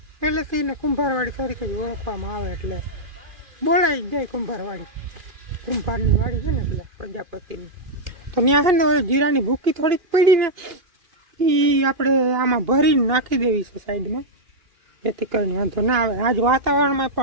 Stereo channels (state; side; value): late; left; 2.5 ms